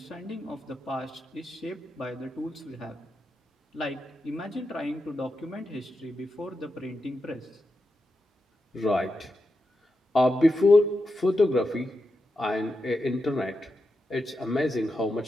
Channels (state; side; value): normal; both; correlation 0.88